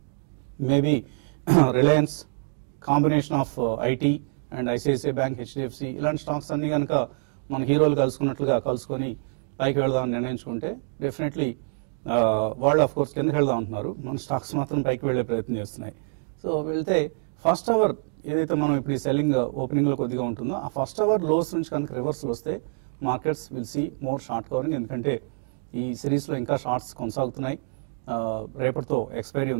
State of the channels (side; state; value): left; silent; digital silence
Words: maybe Reliance, combination of IT and ICICI bank, HDFC ఇలాంటి స్టాక్స్ అన్ని కనుక మన హీరోలు కలుసుకున్నట్లుగా కలుసుకొని పైకి వెళ్దామని నిర్ణయించుకుంటే డెఫినెట్లీ వాళ్ళు ఆఫ్ కోర్స్ కిందకి వెళ్దాం అంటున్నారు, మన స్టాక్స్ మాత్రం పైకి వెళ్లే ప్రయత్నం చేస్తున్నాయి. సో వెళ్తే ఫస్ట్ అవర్ ఏదైతే మనం ఇప్పుడు ఈ సెల్లింగ్ ఓపెనింగ్లో కొద్దిగా ఉంటుందో ఆ ఫస్ట్ అవర్ లోస్ నుంచి కనుక రివర్సల్ వస్తే markets will see more short covering. ఎందుకంటే ఈ సిరీస్లో ఇంకా షార్ట్స్ కొనసాగుతున్నాయి. రేపటితో ఎక్స్పైరీ